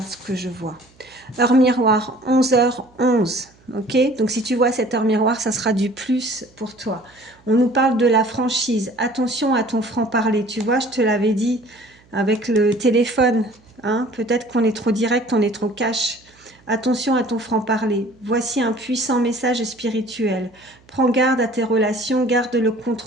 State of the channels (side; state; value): right; noise; hum, 30 dB below the sound